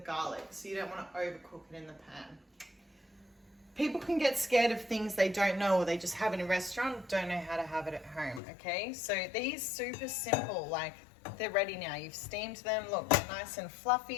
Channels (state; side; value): drops out; right; at 8.4 s